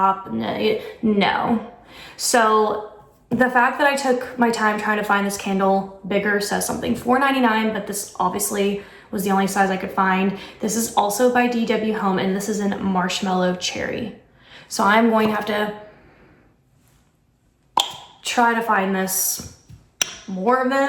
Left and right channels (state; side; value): identical; both; correlation 1.00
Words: no. So the fact that I took my time trying to find this candle bigger says something. $4.99, but this obviously was the only size I could find. This is also by DW Home, and this is in Marshmallow Cherry. So I'm going to have to try to find this more of